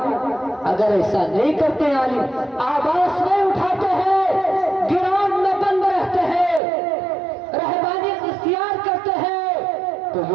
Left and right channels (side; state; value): left; drops out; at 6.6 s